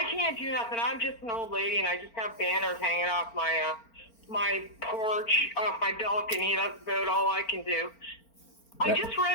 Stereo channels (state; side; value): late; right; 4.4 ms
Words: can't do nothing. I'm just an old lady, and I just have banners hanging off my porch, off my balcony. That's about all I can do. I That. just